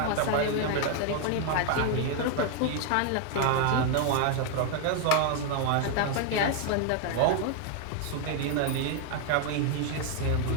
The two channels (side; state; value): both; different; correlation 0.00